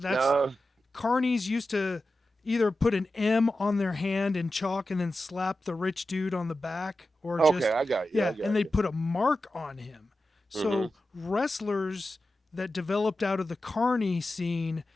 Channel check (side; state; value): both; normal; correlation 0.92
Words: No. carnies used to either put an M on their hand in chalk and then slap the rich dude on the back, or Okay, just, I got you. I yeah, and got they'd you. put a mark on him. Hmm. So wrestlers that developed out of the carny scene